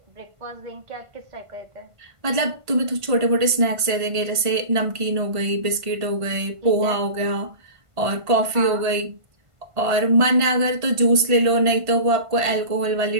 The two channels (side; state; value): left; late; 1.5 ms